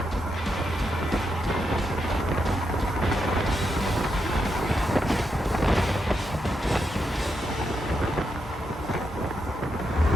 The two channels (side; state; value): both; normal; correlation 0.83